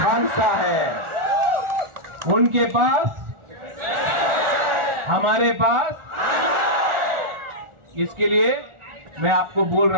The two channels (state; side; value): late; left; 1.4 ms